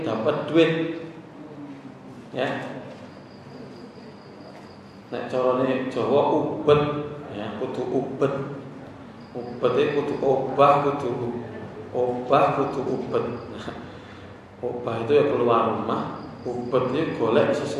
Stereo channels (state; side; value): identical; both; correlation 1.00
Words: dapat duit, ya. Nek carane Jawa ubet, ya, kudu ubet. Ubet itu kudu obah, kudu ubet. Obah itu ya keluar rumah, ubet itu golek